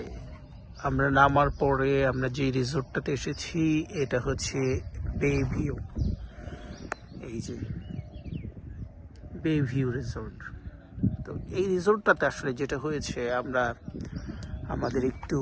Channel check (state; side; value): identical; both; correlation 1.00